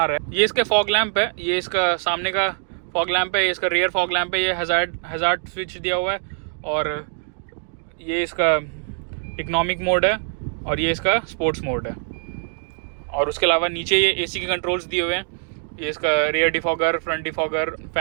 रहे। ये इसके फॉग लैंप है, ये इसका सामने का फॉग लैंप है, ये इसका रियर फॉग लैंप है, ये हज़ार्ड स्विच दिया हुआ है और ये इसका इकोनॉमिक मोड है और ये इसका स्पोर्ट्स मोड है। और उसके अलावा नीचे ये AC के कंट्रोल्स दिए हुए हैं, ये इसका rear defogger, front defogger,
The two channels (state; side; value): silent; left; 56 dB below the other